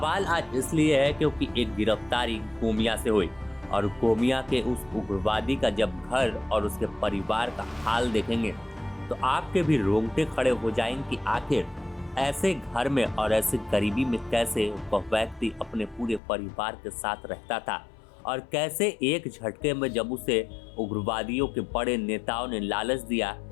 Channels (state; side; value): drops out; right; at 16.2 s